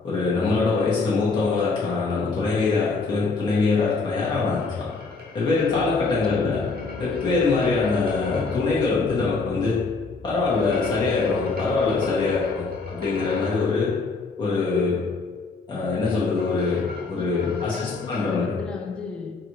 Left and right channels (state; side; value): quieter; right; 4.0 dB